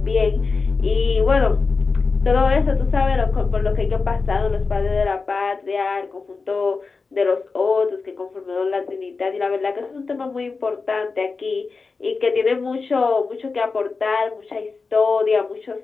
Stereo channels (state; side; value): quieter; right; 4.4 dB